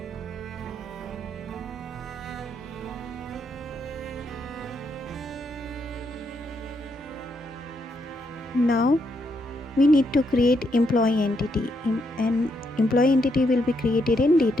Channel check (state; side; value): normal; both; correlation 0.77